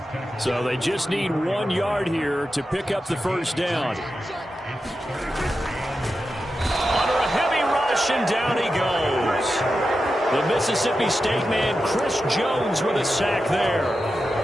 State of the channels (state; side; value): normal; both; correlation 0.90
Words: So they just need 1 yard here to pick up the first down. Under a heavy rush, and down he goes. The Mississippi State man, Chris Jones, with a sack there.